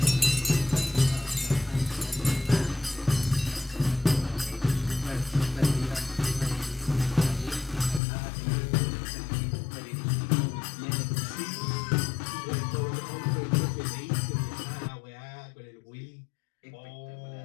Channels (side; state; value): right; drops out; at 8.0 s